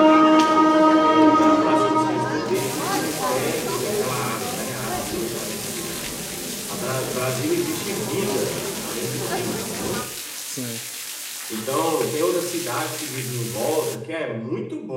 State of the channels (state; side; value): identical; both; correlation 1.00